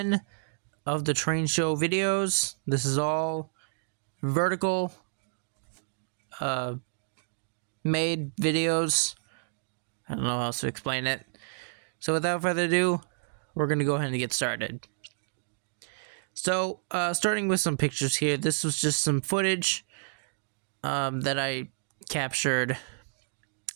of the train show videos. This is all vertical uh, made videos. I don't know how else to explain it. So without further ado, we're going to go ahead and get started. So, starting with some pictures here. This was just some footage that I captured,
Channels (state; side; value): silent; left; digital silence